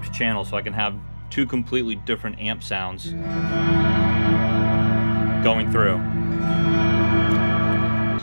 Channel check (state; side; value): inverted; both; correlation -1.00